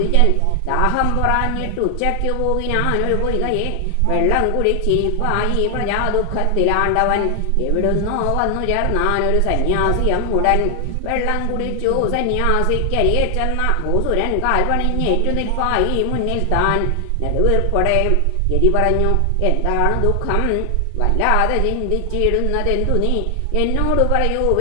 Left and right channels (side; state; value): both; different; correlation 0.00